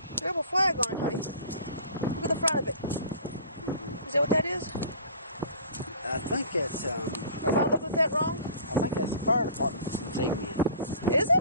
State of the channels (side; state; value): both; inverted; correlation -0.44